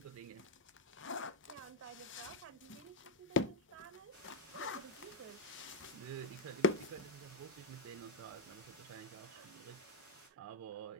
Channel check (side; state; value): both; normal; correlation 0.00